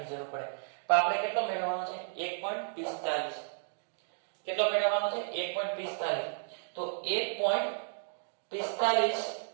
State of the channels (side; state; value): left; silent; digital silence